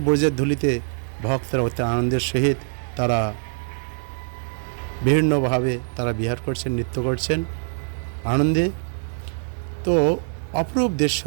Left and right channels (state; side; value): silent; left; 63 dB below the other